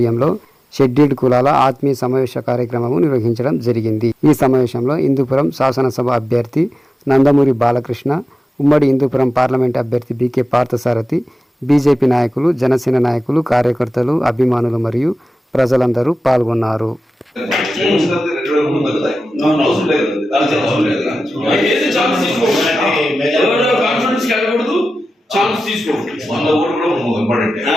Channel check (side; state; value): both; normal; correlation 0.94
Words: షెడ్యూల్డ్ కులాల ఆత్మీయ సమావేశ కార్యక్రమము నిర్వహించడం జరిగింది. ఈ సమావేశంలో హిందూపురం శాసనసభ అభ్యర్థి నందమూరి బాలకృష్ణ, ఉమ్మడి హిందూపురం పార్లమెంట్ అభ్యర్థి బీకే పార్థసారథి, బీజేపీ నాయకులు, జనసేన నాయకులు, కార్యకర్తలు, అభిమానులు మరియు ప్రజలందరూ పాల్గొన్నారు.